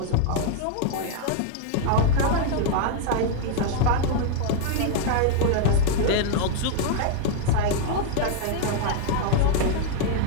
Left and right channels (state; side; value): different; both; correlation 0.00